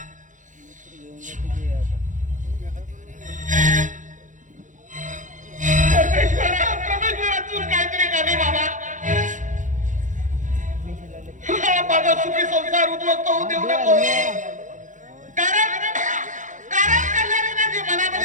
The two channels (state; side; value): late; left; 0.37 ms